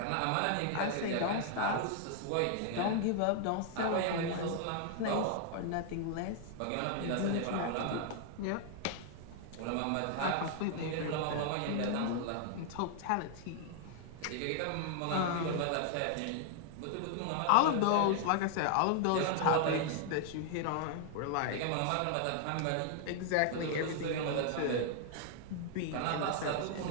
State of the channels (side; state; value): both; different; correlation 0.00